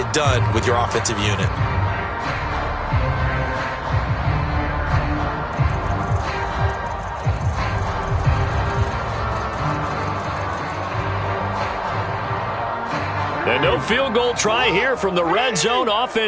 done with your offensive unit. And no field goal try here from the red zone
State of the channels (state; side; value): identical; both; correlation 1.00